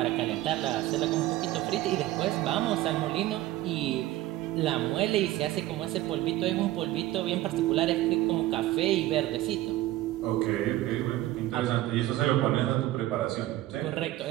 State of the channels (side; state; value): left; quieter; 15.7 dB